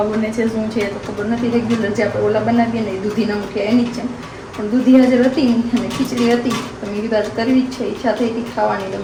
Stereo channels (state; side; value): identical; both; correlation 1.00